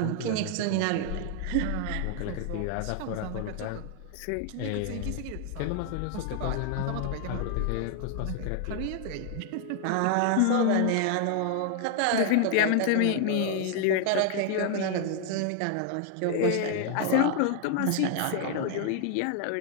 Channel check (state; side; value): different; both; correlation 0.00